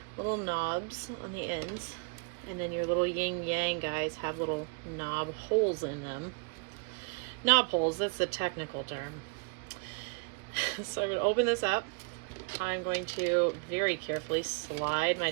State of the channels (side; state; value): left; quieter; 35.5 dB